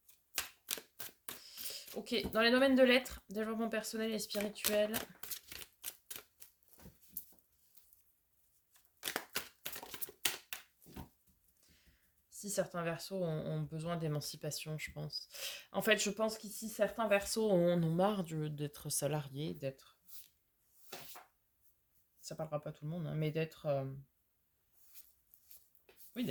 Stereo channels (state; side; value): identical; both; correlation 1.00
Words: Ok, dans les domaines de l'être, développement personnel et spirituel. Si certains versos ont besoin d'émancipation, je pense. En fait, je pense qu'ici, certains versos en ont marre d'être salariés, d'être... Ça parlera pas à tout le monde, hein, mais d'être... Oui,